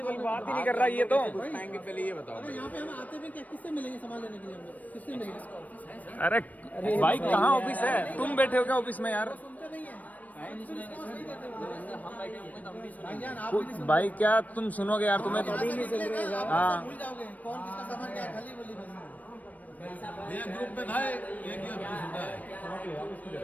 बात ही नहीं कर रहा ये तो। आएंगे, पहले ये बताओ। अरे यहाँ पे हम आते भी क्या, किससे मिलेंगे सामान लेने के लिए? हम लोग किससे मिलेंगे? अरे भाई कहाँ ऑफिस है? तुम बैठे हो क्या ऑफिस में यार? भाईजान आप भाई क्या तुम सुनोगे यार? तुम्हें हाँ भूल जाओगे कौन किसका सामान क्या है, खाली बोली बस।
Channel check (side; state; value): right; late; 0.074 ms